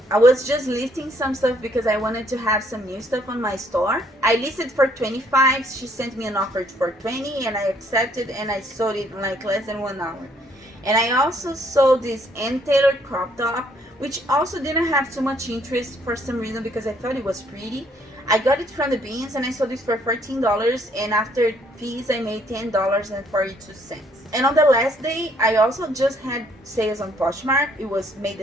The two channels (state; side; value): normal; both; correlation 0.66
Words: I was just listing some stuff because I wanted to have some new stuff on my store. I listed for $25. She sent me an offer for $20, and I accepted, and I sold it in like less than 1 hour. And I also sold this Ann Taylor crop top, which also didn't have too much interest for some reason because I thought it was pretty. I got it from the bins, and I sold it for $14, and after fees I made $10.42. And on the last day, I also just had sales on Poshmark. It was May the